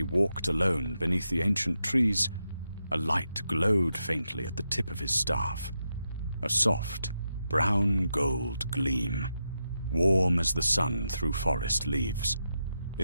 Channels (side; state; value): both; inverted; correlation -0.86